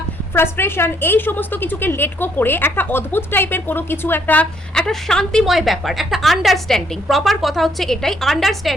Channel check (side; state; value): both; normal; correlation 0.69